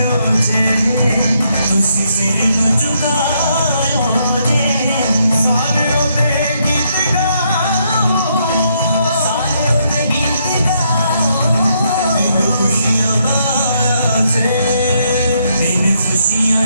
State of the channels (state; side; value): inverted; both; correlation -0.75